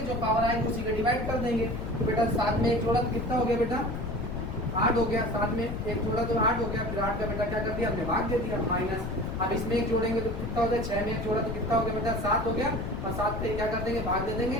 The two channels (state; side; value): noise; left; rumble, 4 dB below the sound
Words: जो पावर आएगी उसी को डिवाइड कर देंगे। तो बेटा 7 में एक जोड़ा तो कितना हो गया बेटा, 8 हो गया। 7 में एक जोड़ा तो 8 हो गया, फिर 8 का बेटा क्या कर दिया, हमने भाग दे दिया, माइनस। अब इसमें एक जोड़ेंगे तो कितना हो जाएगा, 6 में एक जोड़ा तो कितना हो गया बेटा, 7 हो गया, और 7 पे क्या कर देंगे, भाग दे देंगे।